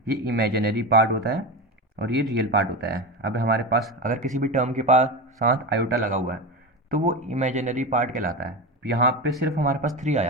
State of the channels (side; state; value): both; normal; correlation 0.21